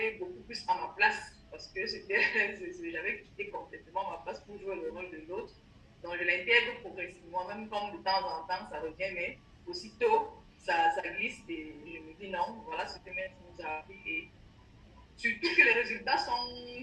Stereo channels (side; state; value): both; identical; correlation 1.00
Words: beaucoup plus à ma place parce que j'avais quitté complètement ma place pour jouer le rôle de l'autre. Donc, je l'intègre progressivement, même comme de temps en temps ça revient, mais aussitôt ça glisse et je me dis non, voilà ce que maître nous a appris. Et surtout que les résultats